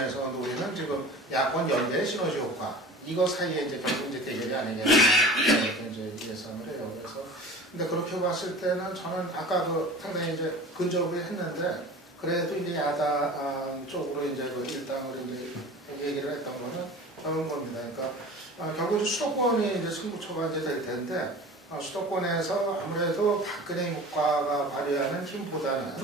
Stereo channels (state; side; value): normal; both; correlation 0.39